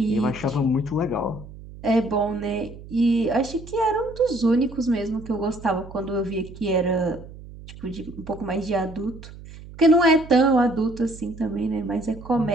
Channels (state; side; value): noise; right; hum, 16 dB below the sound